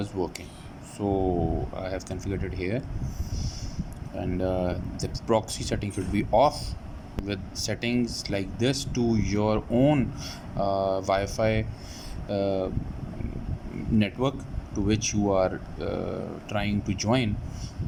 working, so I have configured it here. And the proxy setting should be off. With settings like this to your own Wi-Fi network to which you are trying to join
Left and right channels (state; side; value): identical; both; correlation 1.00